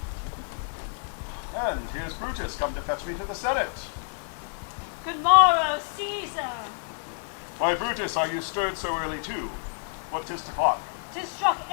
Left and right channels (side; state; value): right; silent; digital silence